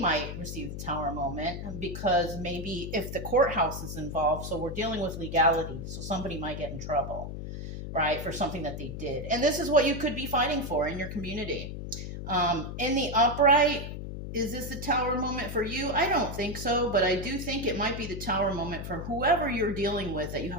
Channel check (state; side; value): noise; left; hum, 7 dB below the sound